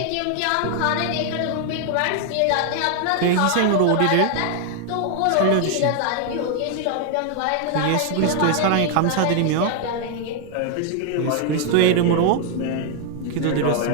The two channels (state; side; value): different; both; correlation 0.00